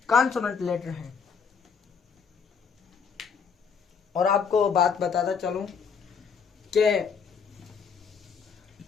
कॉन्सोनेंट लेटर हैं। और आपको बात बताता चलूं कि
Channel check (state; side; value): quieter; right; 6.1 dB